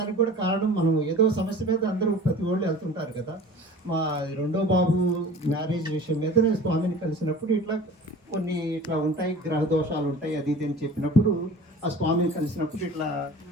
కూడా కారణం, మనం ఏదో సమస్య మీద అందరూ ప్రతి వాళ్ళు వెళ్తుంటారు కదా. మా రెండో బాబు మ్యారేజ్ విషయం మీద నేను స్వామిని కలిసినప్పుడు కొన్ని ఇట్లా ఉంటాయి, గ్రహ దోషాలు ఉంటాయి, అది ఇది అని చెప్పినప్పుడు ఆ స్వామిని కలిసినప్పుడు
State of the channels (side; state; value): both; normal; correlation 0.41